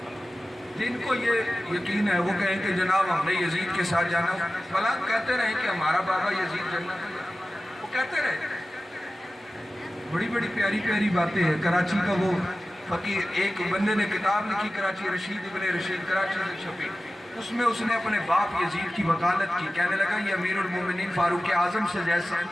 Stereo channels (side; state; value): both; normal; correlation 0.96